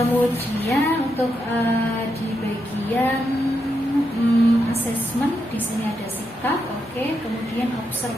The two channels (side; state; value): both; normal; correlation 0.83